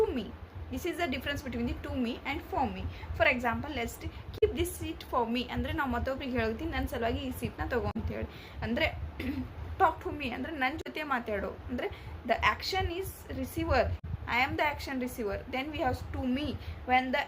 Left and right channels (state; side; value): identical; both; correlation 1.00